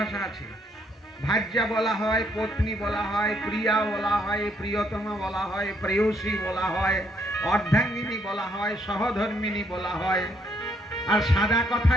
আছে। ভার্যা বলা হয়, পত্নী বলা হয়, প্রিয়া বলা হয়, প্রিয়তমা বলা হয়, প্রেয়সী বলা হয়, অর্ধাঙ্গিনী বলা হয়, সহধর্মিনী বলা হয়, আর সাদা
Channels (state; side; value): normal; both; correlation 0.71